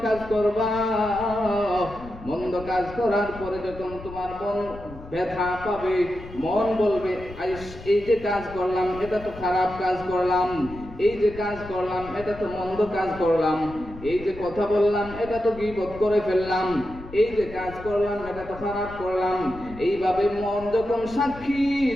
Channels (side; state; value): left; noise; rumble, 15 dB below the sound